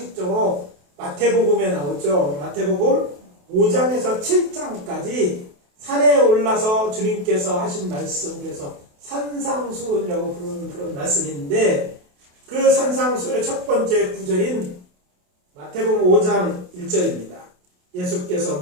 마태복음에 나오죠. 마태복음 5장에서 7장까지 산에 올라서 주님께서 하신 말씀, 그래서 산상수훈이라고 부르는 그런 말씀인데 그 산상수훈의 첫 번째 구절인 마태복음 5장 1절입니다. 예수께서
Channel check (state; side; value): late; left; 28 ms